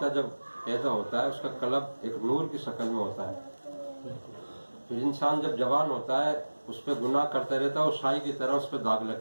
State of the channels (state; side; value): inverted; both; correlation -1.00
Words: جب پیدا ہوتا ہے اس کا قلب ایک نور کی شکل میں ہوتا ہے. پھر انسان جب جوان ہوتا ہے اس پہ گناہ کرتے رہتا ہے اور شائی کی طرح اس پہ داغ